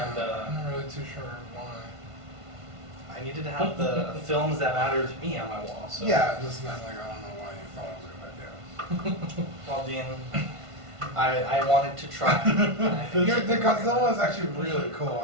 And, I'm not really too sure why. I needed to have the films that matter to me on my wall. So. Yeah, it just meant like, I don't know why you thought it was a good idea. Well, Dean, I wanted to try. The Godzilla one is actually really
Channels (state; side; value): late; left; 1.5 ms